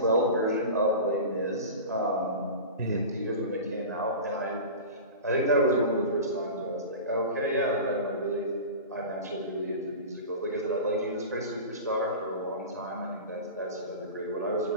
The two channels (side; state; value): both; inverted; correlation -0.31